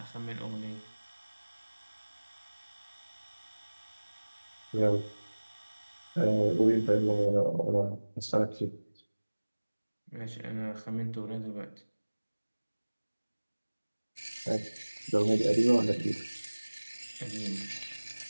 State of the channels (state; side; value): inverted; both; correlation -1.00